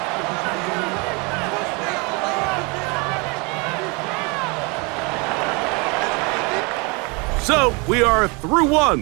So, we are through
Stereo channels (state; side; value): quieter; left; 29.7 dB